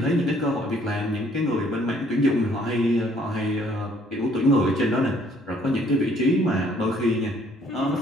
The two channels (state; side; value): normal; both; correlation 0.62